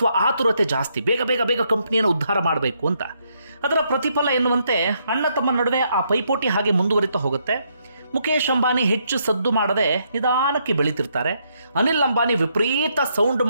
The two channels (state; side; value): inverted; both; correlation -0.75